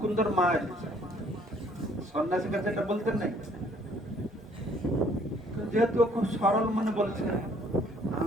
মা এসেছে। সন্ন্যাসীর কাছে এটা বলতেন নাই, যেহেতু খুব সরল মনে বলছে,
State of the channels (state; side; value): normal; both; correlation 0.61